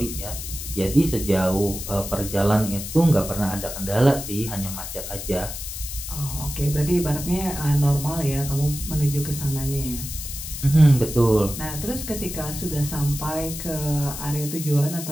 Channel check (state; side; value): noise; left; hiss, 8 dB below the sound